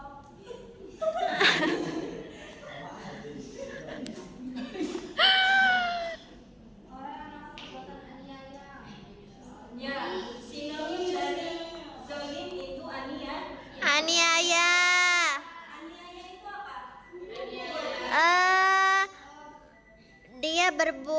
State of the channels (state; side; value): identical; both; correlation 1.00